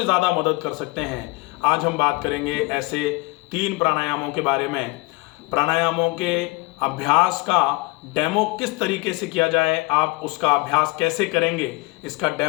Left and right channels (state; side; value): quieter; right; 24.3 dB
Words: ज़्यादा मदद कर सकते हैं। आज हम बात करेंगे ऐसे 3 प्राणायामों के बारे में। प्राणायामों के अभ्यास का डेमो किस तरीके से किया जाए, आप उसका अभ्यास कैसे करेंगे, इसका